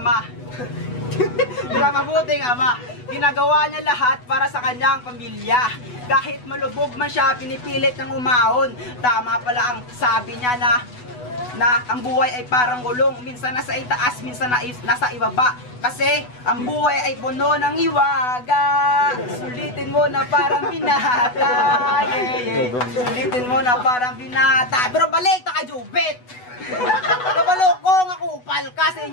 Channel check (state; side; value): late; right; 8.1 ms